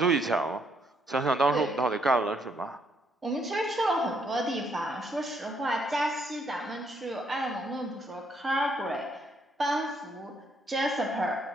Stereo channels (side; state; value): both; normal; correlation 0.71